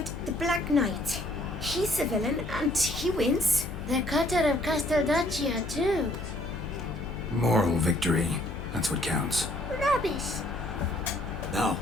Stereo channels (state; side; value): noise; left; hum, 9 dB below the sound